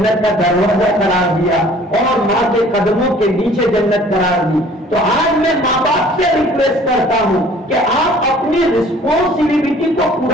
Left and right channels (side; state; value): both; normal; correlation 0.53